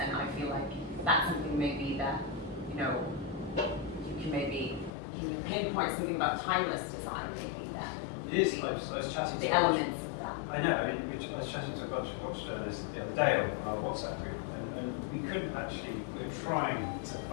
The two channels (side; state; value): right; drops out; at 4.9 s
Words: I feel like that's something maybe that, you know, can you pinpoint something about timeless design, maybe that? It is. I was chatting the to elements of that. I know. I was chatting to a bunch of watch journalists the other day on our WhatsApp group, and we couldn't actually. We were trying to